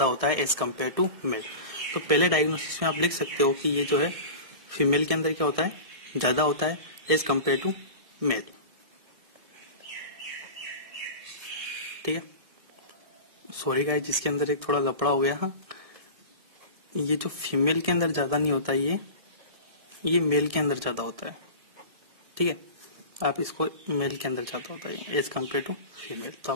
होता है एज कम्पेयर टू मेल। तो पहले डायग्नोसिस में आप लिख सकते हो कि ये जो है फीमेल के अंदर क्या होता है, ज्यादा होता है एज कम्पेयर टू मेल। ठीक है, सॉरी गाइस, जिसके अंदर एक थोड़ा लफड़ा हो गया। हाँ, ये जो फीमेल के अंदर ज्यादा नहीं होता, ये मेल के अंदर ज्यादा होता है। ठीक है, आप इसको मेल के अंदर ज्यादा होता है एज कम्पेयर टू फीमेल। तो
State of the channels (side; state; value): left; late; 1.7 ms